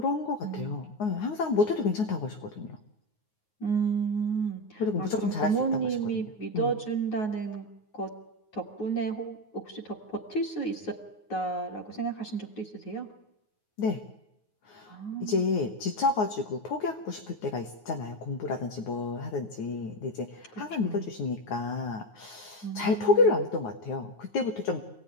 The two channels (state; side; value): late; right; 9.4 ms